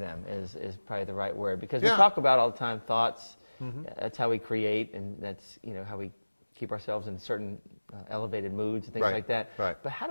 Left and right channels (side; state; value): both; inverted; correlation -1.00